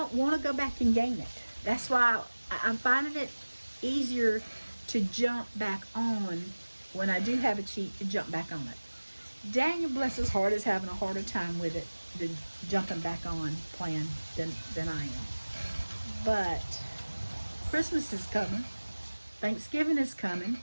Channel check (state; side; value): inverted; both; correlation -1.00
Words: want to go back and gain it. That's why I'm finding it easier to jump back on when I do have a cheat, to jump back on it. Daniel, bless his heart, is having a harder time with it than jumping back on plan than I am. But Christmas is coming. Thanksgiving is coming.